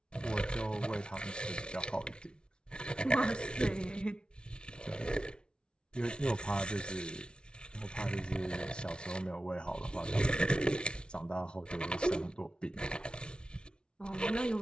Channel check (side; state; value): right; late; 0.056 ms